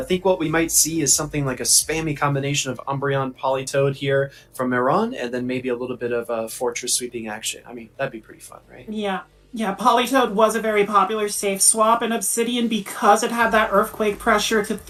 think what we might see is something like a spammy combination of Umbreon Politoed here from Maron, and then maybe a little bit of Fortress sweeping action. I mean, that'd be pretty fun, right? Yeah, Politoed was a very popular safe swap in Obsidian because it had that Earthquake pressure to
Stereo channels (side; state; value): both; identical; correlation 1.00